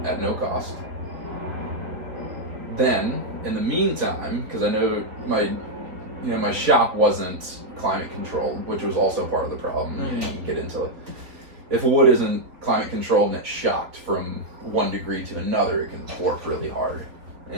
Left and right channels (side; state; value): left; late; 3.9 ms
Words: at no cost. Then, in the meantime, because I know my shop wasn't climate controlled, which was also part of the problem. You know, you can get into if wood isn't climate controlled and it's shocked from 1 degree to another, it can warp really hard.